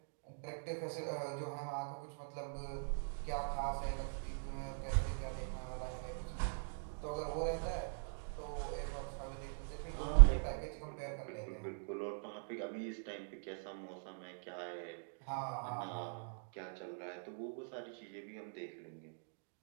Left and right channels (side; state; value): left; silent; digital silence